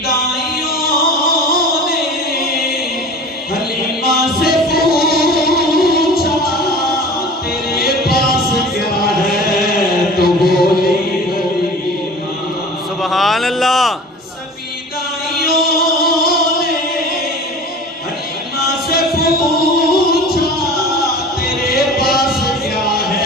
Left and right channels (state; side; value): normal; both; correlation 0.40